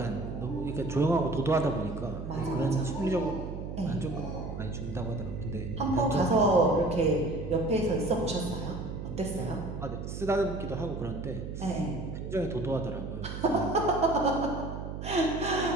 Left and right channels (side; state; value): right; noise; hum, 7 dB below the sound